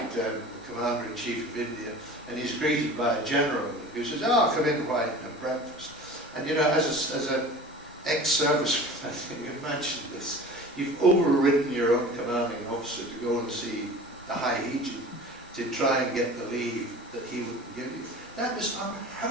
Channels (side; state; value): both; normal; correlation 0.39